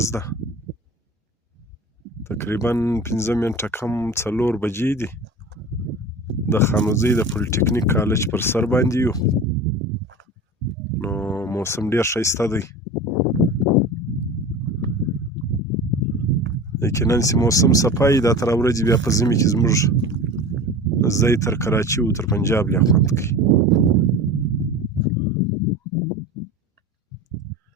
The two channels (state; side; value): normal; both; correlation 0.33